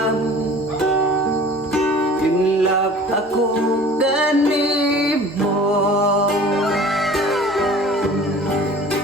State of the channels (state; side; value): normal; both; correlation 0.45